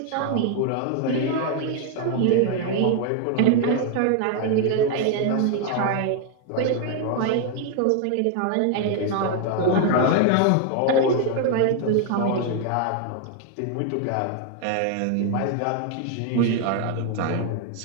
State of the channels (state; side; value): different; both; correlation 0.00